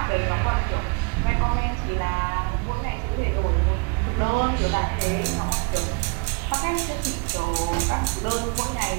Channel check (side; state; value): left; quieter; 33.1 dB